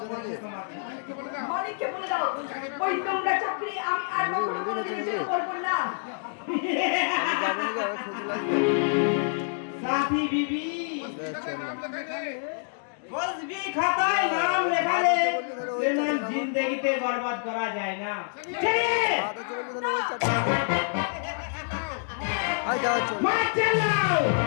নাকি মালিককে বলে দাও, ওই নোংরা চাকরি আমি আর কখনো কোনোদিনও করবো না। যাবো নাকি আবার খুশি লাগবে साथी बीबी कुछ भी खाताय नाम लिखा ले लेकिन जिंदगी ते बर्बाद करा जाए ना चलिए ভাত চলে গেছে না চাটা আই যাও চল মার চালাও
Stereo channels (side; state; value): right; silent; digital silence